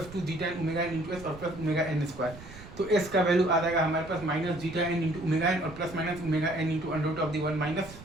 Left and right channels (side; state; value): right; noise; rumble, 16 dB below the sound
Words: 2 zeta N omega N into S और प्लस ओमेगा एन स्क्वायर। तो एस का वैल्यू आ जाएगा हमारे पास minus zeta N into omega N और plus minus omega N into under root of the one minus